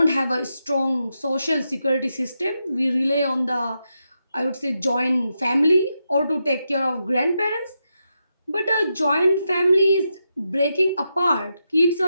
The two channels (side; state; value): both; inverted; correlation -0.86